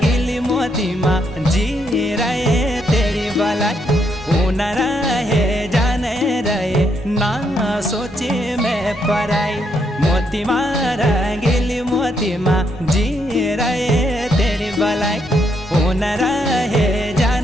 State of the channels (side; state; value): both; normal; correlation 0.76